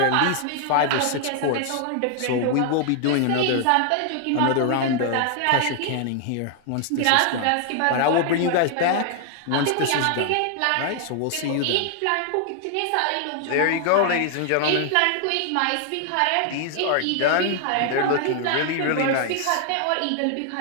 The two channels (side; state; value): both; different; correlation 0.00